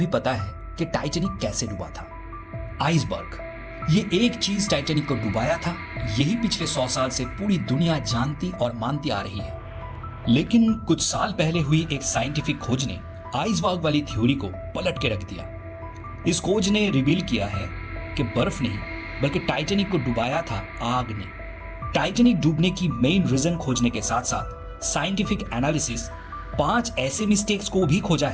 पता है कि टाइटैनिक कैसे डूबा था। आइसबर्ग, ये एक चीज टाइटैनिक को डुबाया था, यही पिछले 100 साल से पूरी दुनिया जानती और मानती आ रही है। लेकिन कुछ साल पहले हुई एक साइंटिफिक खोज ने आइसबर्ग वाली थ्योरी को पलट के रख दिया। इस खोज ने रिवील किया है कि बर्फ नहीं बल्कि टाइटैनिक को डुबाया था आग ने। टाइटैनिक डूबने की मेन रीजन खोजने के साथ साथ साइंटिफिक एनालिसिस 5 ऐसे मिस्टेक्स को भी खोजा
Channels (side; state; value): both; identical; correlation 1.00